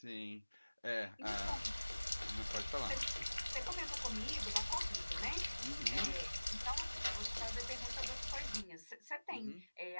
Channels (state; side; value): inverted; both; correlation -1.00